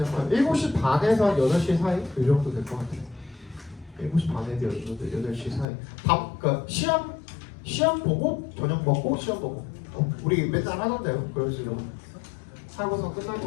7시 반에서 한 8시 사이? 그 정도 될 것 같아요. 7시 반에서 8시 사이. 그러니까 시험 보고 저녁 먹고 시험 보고. 우리 맨날 하던데요. 그런 식으로 하고서 끝날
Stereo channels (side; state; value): right; drops out; at 5.7 s